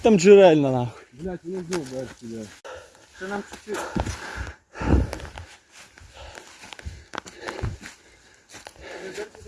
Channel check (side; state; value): both; identical; correlation 1.00